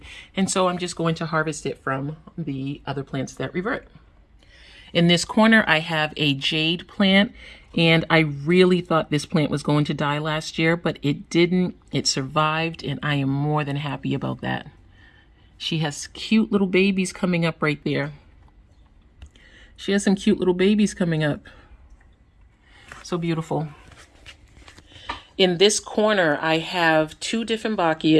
And so I'm just going to harvest it from the other plants that revert. In this corner, I have a jade plant, and I really thought this plant was going to die last year, but it didn't. It survived, and I am more than happy about that. She has cute little babies coming up right there. She has some cute little babies coming up. So beautiful. In this corner, I have 2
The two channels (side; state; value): both; identical; correlation 1.00